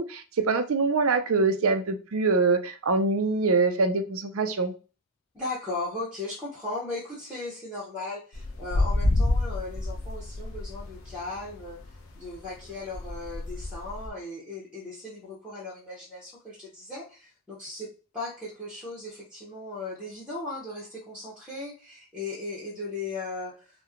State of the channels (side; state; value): both; normal; correlation 0.05